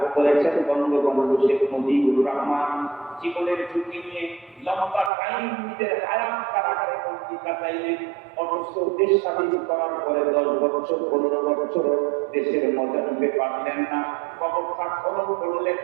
করেছেন বঙ্গবন্ধু শেখ মুজিবুর রহমান। জীবনের ঝুঁকি নিয়ে লম্বা টাইম নিজের হায়াত কারাগারে বন্দী কাটাইলেন, অথচ দেশ স্বাধীন করার পরে 10 বছর 15 বছর দেশের মজা নিতে পারলেন না। কবরটা খনন করলে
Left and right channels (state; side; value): drops out; left; at 5.1 s